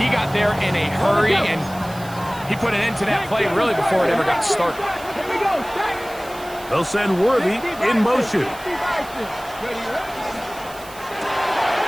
got there in a hurry, and he put an end to that play really before it ever got started. Here we go. They'll send Worthy in motion. The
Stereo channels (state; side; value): noise; right; hiss, 19 dB below the sound